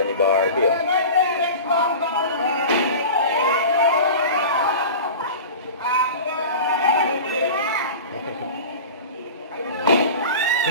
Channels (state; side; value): inverted; both; correlation -0.34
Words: ni Barbie, oh.